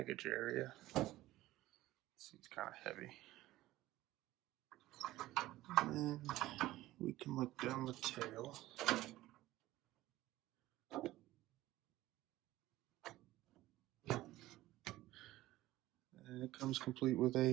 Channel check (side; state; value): left; quieter; 16.4 dB